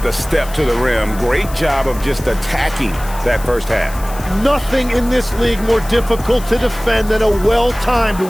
the step to the rim. Great job of just attacking that first half. Nothing in this league more difficult to defend than a well-timed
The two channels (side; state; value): left; noise; hiss, 17 dB below the sound